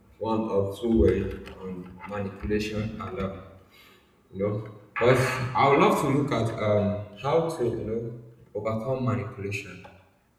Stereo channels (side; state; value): both; identical; correlation 1.00